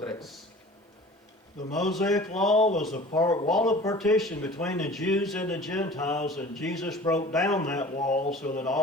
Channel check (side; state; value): both; normal; correlation 0.43